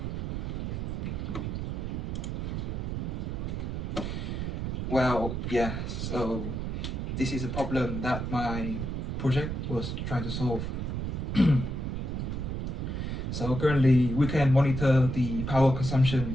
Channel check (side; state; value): right; noise; rumble, 3 dB below the sound